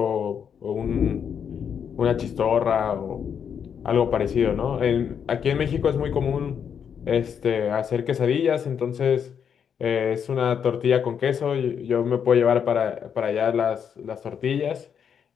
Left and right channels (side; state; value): right; quieter; 7.6 dB